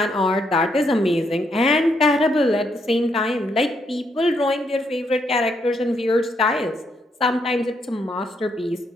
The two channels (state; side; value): normal; both; correlation 0.76